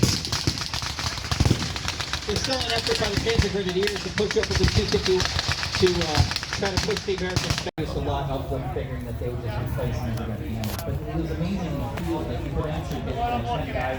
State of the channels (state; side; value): identical; both; correlation 1.00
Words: There's still an effort by the Panzer Grenadiers to push up with the 250 to try to push the Americans back. There's a lot of them figuring that they would just replace them. But it was amazing in the field that you could actually get 10